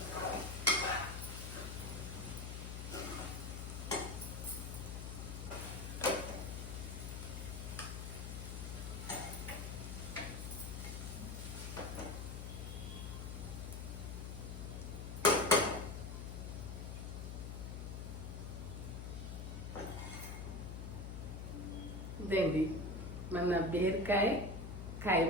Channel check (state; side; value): noise; left; hum, 6 dB below the sound